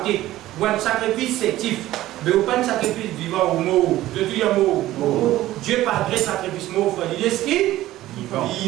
ou un sacrifice sétif. Mais vous pas un sacrifice vivant ou mort. Je dis un mot. Dieu pas gré sacrifice mort. Il dit ce qui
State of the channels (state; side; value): quieter; left; 15.3 dB